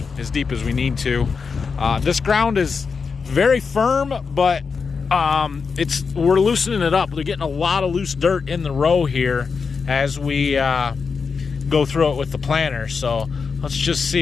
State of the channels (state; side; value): quieter; right; 5.3 dB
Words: as deep as we need to. This ground is very firm, but we're loosening it up. We're getting a lot of loose dirt in the row here as we go through it with the planter. So let's just